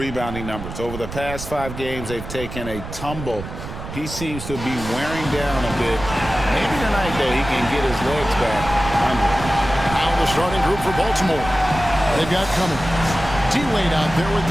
numbers. Over the past 5 games, they've taken a tumble. He seems to be wearing down a bit. Maybe tonight, though, he can get his legs back under. Now the starting group for Baltimore. They've got Cummings. D-Wade out there with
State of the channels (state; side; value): noise; right; rumble, 10 dB below the sound